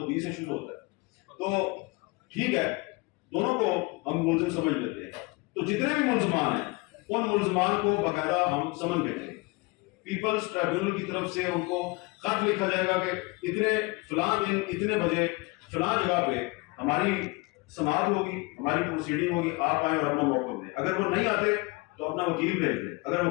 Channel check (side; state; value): right; quieter; 25.9 dB